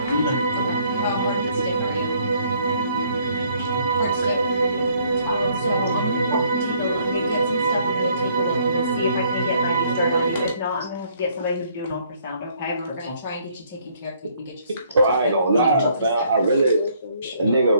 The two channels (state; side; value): inverted; both; correlation -0.65